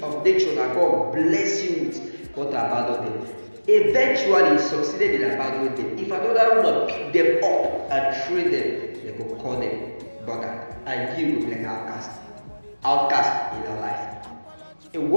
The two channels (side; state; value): both; inverted; correlation -1.00